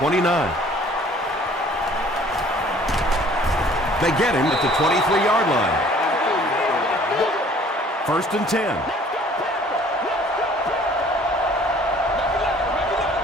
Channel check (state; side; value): normal; both; correlation 0.54